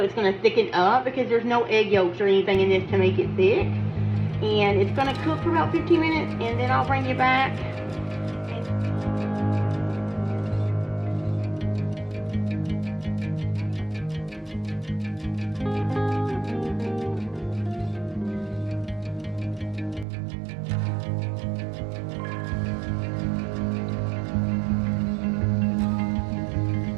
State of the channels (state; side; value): drops out; left; at 20.1 s